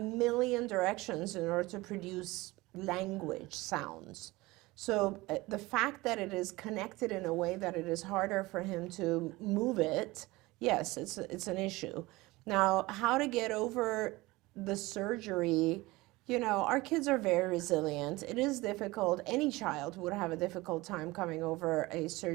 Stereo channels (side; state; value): left; quieter; 20.9 dB